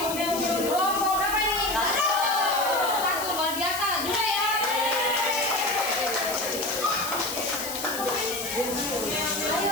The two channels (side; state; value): left; noise; hiss, 7 dB below the sound